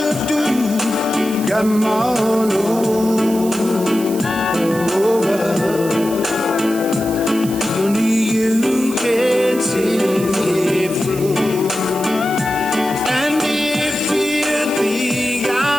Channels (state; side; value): noise; right; hiss, 13 dB below the sound